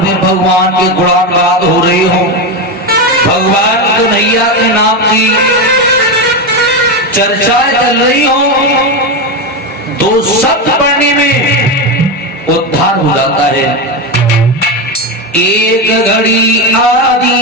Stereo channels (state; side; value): normal; both; correlation 0.13